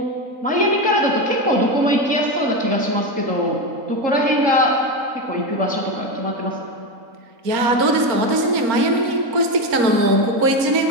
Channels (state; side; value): late; left; 4.3 ms